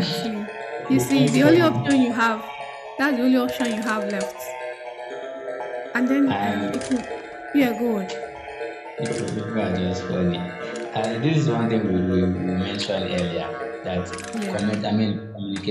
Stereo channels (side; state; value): both; identical; correlation 1.00